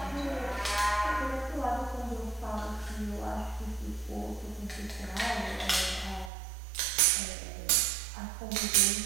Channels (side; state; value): left; drops out; at 6.3 s